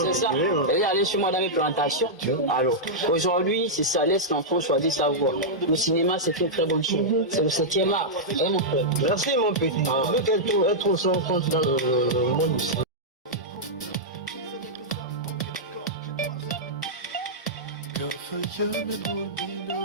C'est ça. Elle est allée chez moi dans mes plantations. Alors, aujourd'hui, c'est ça, laisse l'enfant choisir sa voie. Le cinéma, c'est une très bonne chose. C'est le 7e art. Hein, mon frère? Merci mon petit. Vu qu'elle trouve son compte dans le monde du cinéma. Good for you and we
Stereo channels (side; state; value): both; normal; correlation -0.08